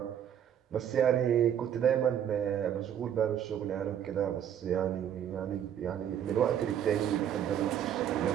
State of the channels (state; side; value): quieter; left; 9.6 dB